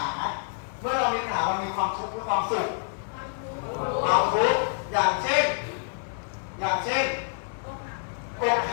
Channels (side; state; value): right; silent; 57 dB below the other